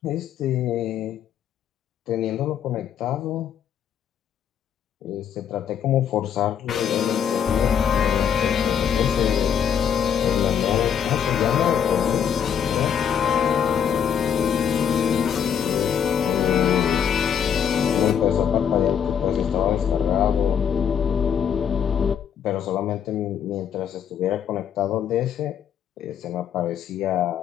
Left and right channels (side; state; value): right; quieter; 8.3 dB